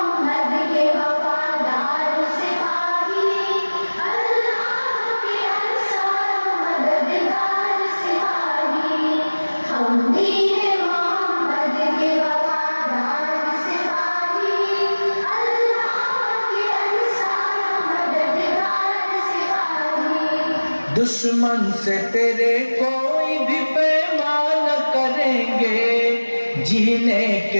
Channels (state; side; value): inverted; both; correlation -1.00